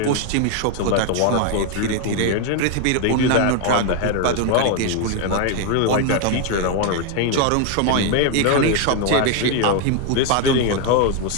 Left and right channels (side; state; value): both; different; correlation 0.01